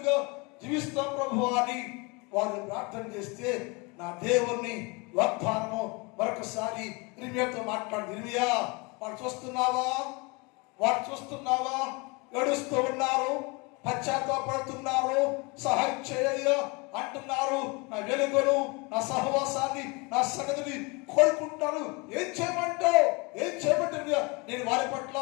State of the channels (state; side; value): quieter; right; 28.4 dB